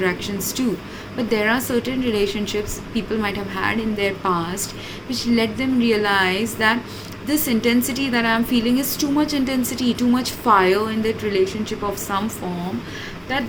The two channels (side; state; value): both; identical; correlation 1.00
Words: too. But there are certain relationships people might have had in their past which let them realize that this intensity that I'm feeling is too much intensity, too much fire in that relationship of some form that